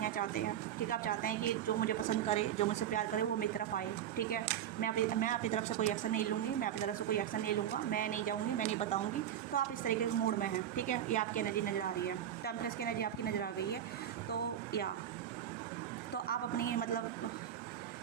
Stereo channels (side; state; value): left; quieter; 10.3 dB